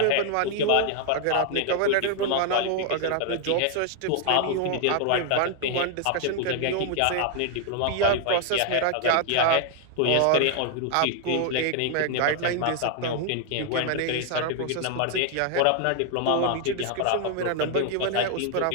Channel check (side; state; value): both; different; correlation 0.00